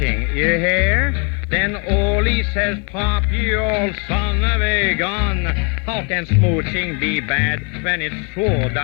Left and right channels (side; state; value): right; quieter; 35.8 dB